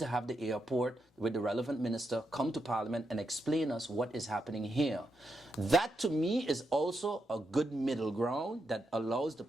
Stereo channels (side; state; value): both; normal; correlation 0.83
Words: have the airport with the relevant minister come to Parliament and explain us what is happening here. That, to me, is also a good middle ground that allows the